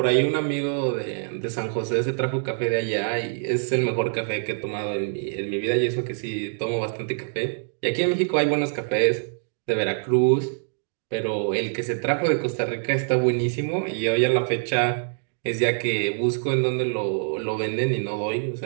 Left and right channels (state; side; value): silent; left; digital silence